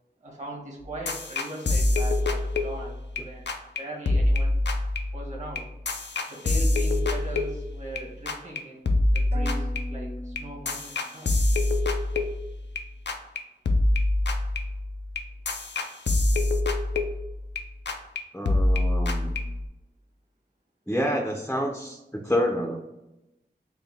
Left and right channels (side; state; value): both; normal; correlation 0.82